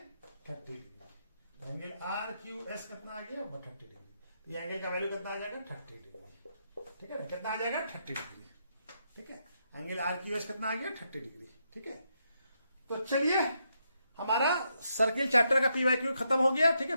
30 degree. Angle R Q S कितना आ गया 30 डिग्री, ये एंगल का वैल्यू कितना आ जाएगा 30 डिग्री। ठीक है ना, कितना आ जाएगा 30 डिग्री। ठीक है, एंगल आर क्यू एस कितना आ गया 30 डिग्री। ठीक है, तो चलिए हमारा सर्किल चैप्टर का पीवाईक्यू खत्म हो गया। ठीक है,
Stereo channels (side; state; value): both; inverted; correlation -0.80